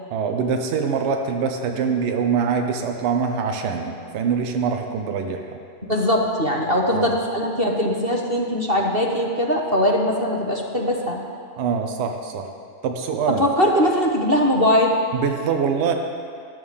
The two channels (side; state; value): left; late; 2.7 ms